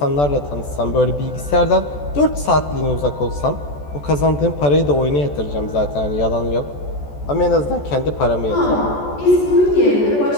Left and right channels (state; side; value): late; right; 14 ms